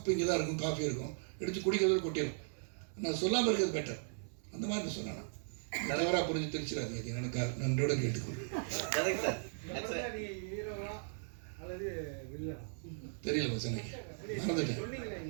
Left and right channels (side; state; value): left; silent; 53 dB below the other